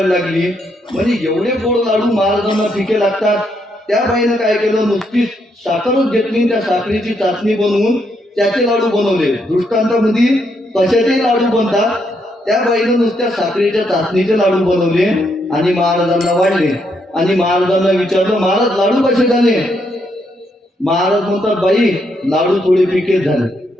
लागली, म्हणजे एवढे गोड लाडू महाराजांना फिके लागतात. त्या बाईनं काय केलं, नुसती साखरच घेतली, त्या साखरेची चाचणी बनवून त्याचे लाडू बनवले. दृष्टांतामध्ये कशाचे लाडू बनतात, त्या बाईनं नुसत्या साखरेच्या चाचणीचे लाडू बनवले आणि महाराजांना वाढले. आणि महाराजांना विचारलं, महाराज लाडू कसे झाले. महाराज म्हणतात, बाई लाडू थोडे फिकेच झाले.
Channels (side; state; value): both; normal; correlation 0.77